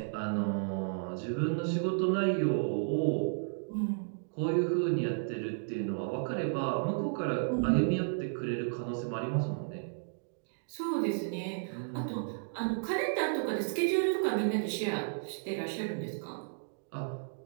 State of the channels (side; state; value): left; silent; digital silence